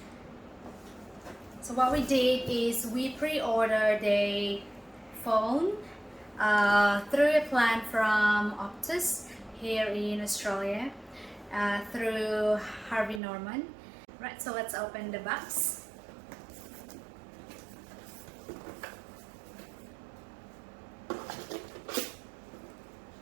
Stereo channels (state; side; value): drops out; left; at 13.2 s